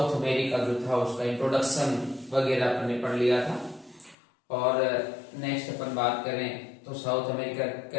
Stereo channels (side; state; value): right; drops out; at 4.2 s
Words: अमेरिका जो था उसका इंट्रोडक्शन वगैरह अपन ने पढ़ लिया था। और नेक्स्ट अपन बात करें तो साउथ अमेरिका